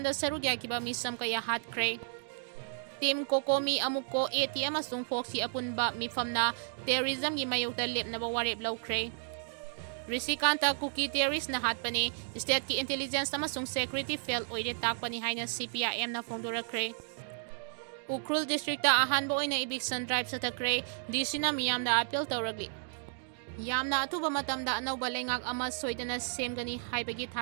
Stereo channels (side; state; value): left; silent; digital silence